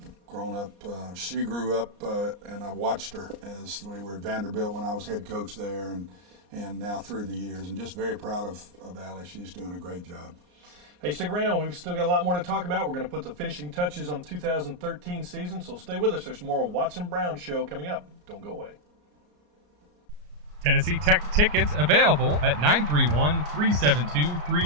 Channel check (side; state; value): left; late; 34 ms